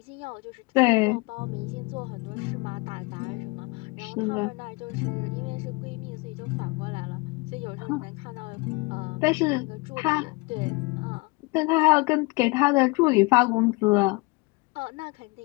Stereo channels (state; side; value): quieter; right; 26.0 dB